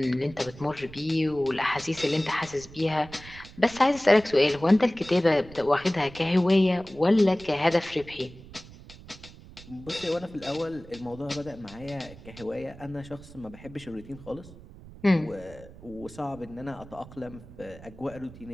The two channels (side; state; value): right; noise; rumble, 18 dB below the sound